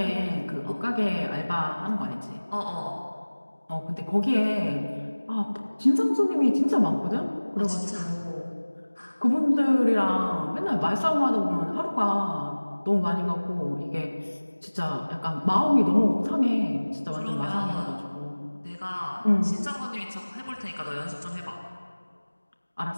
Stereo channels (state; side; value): inverted; both; correlation -1.00